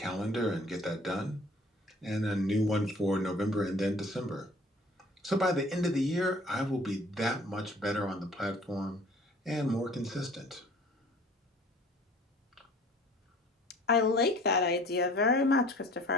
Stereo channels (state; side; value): normal; both; correlation 0.50